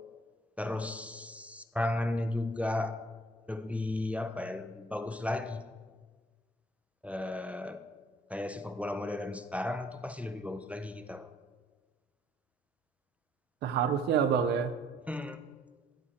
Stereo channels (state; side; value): normal; both; correlation 0.61